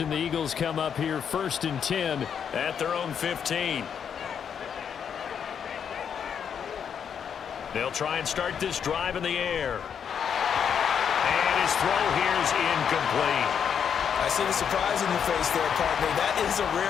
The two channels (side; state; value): right; quieter; 7.7 dB